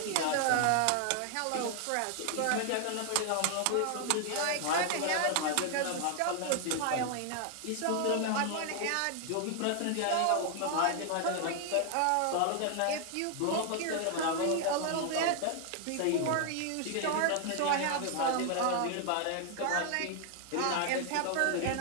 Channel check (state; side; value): different; both; correlation 0.00